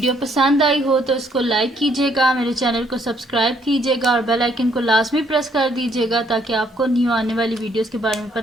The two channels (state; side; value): normal; both; correlation 0.68